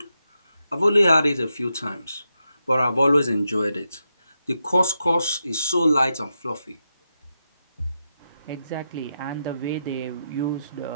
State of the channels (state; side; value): inverted; both; correlation -0.86